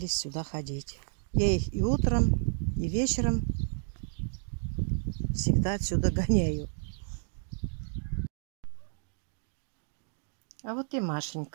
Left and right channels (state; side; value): silent; left; digital silence